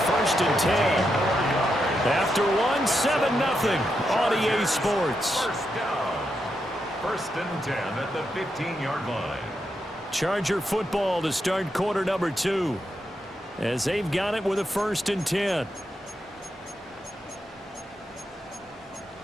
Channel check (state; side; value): normal; both; correlation 0.84